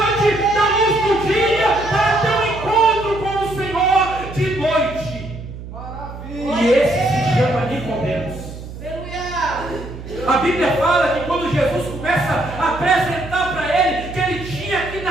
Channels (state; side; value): noise; right; hum, 12 dB below the sound